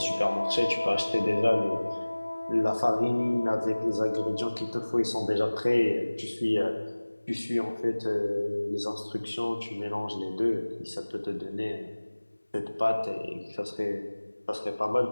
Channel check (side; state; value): both; inverted; correlation -1.00